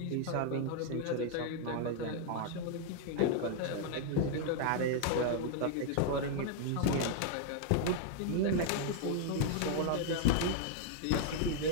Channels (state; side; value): different; both; correlation 0.00